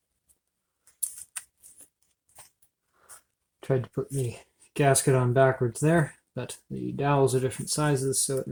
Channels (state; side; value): identical; both; correlation 1.00